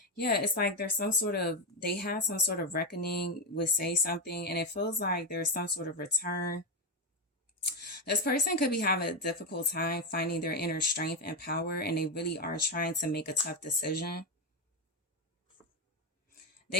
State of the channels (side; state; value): both; normal; correlation 0.09